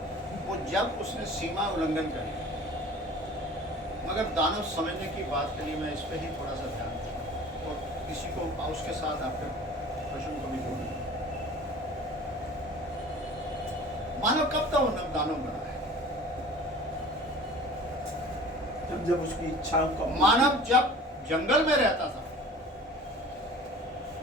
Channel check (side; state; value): both; normal; correlation 0.43